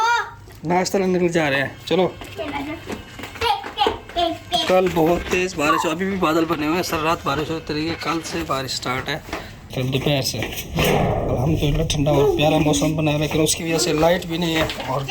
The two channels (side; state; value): both; identical; correlation 1.00